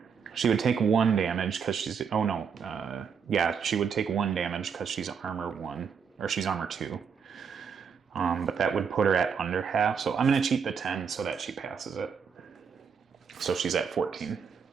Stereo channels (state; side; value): quieter; left; 6.5 dB